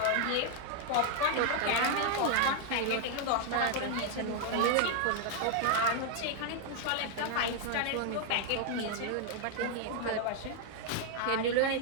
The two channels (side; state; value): both; different; correlation 0.00